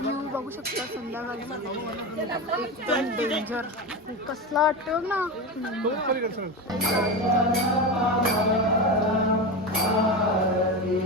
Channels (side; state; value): both; normal; correlation 0.20